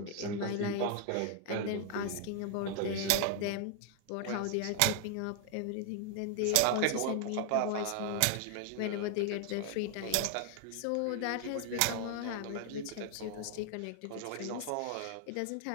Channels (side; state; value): both; different; correlation 0.00